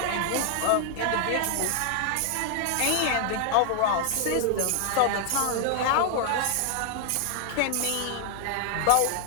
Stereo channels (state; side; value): different; both; correlation 0.00